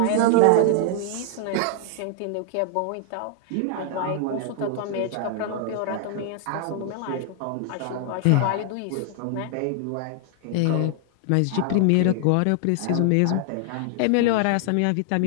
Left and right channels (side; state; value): both; different; correlation 0.00